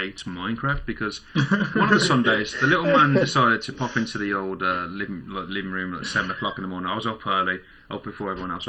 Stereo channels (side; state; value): both; identical; correlation 1.00